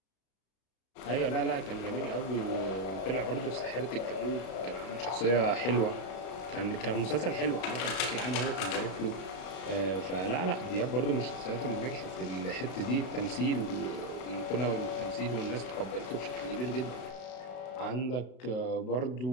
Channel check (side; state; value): right; late; 32 ms